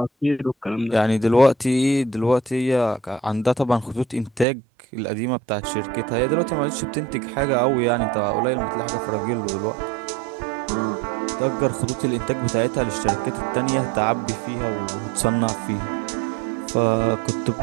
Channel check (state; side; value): drops out; left; at 4.5 s